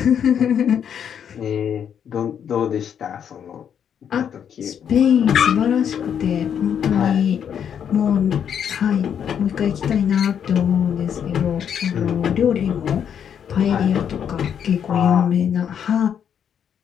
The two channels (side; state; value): right; quieter; 8.4 dB